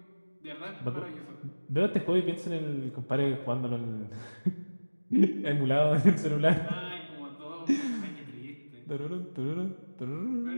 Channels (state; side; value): inverted; both; correlation -1.00